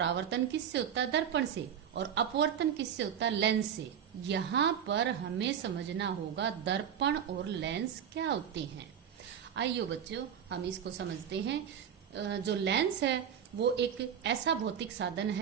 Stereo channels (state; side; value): quieter; left; 8.6 dB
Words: किससे होता है? दर्पण से। और अपवर्तन किससे होता है? लेंस से। यहाँ पर हमें समझना होगा दर्पण और लेंस क्या होते हैं। आइए बच्चों हम इसको समझते हैं। जो लेंस है वो एक ऐसा भौतिक साधन